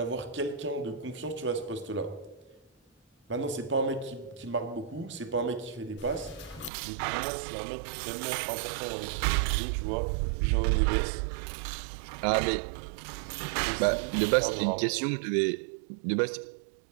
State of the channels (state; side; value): drops out; left; at 6.7 s